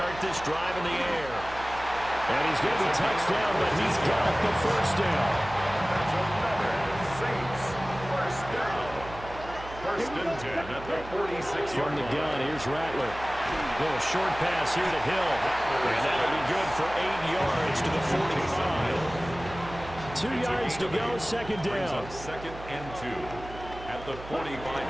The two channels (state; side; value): noise; right; hum, 14 dB below the sound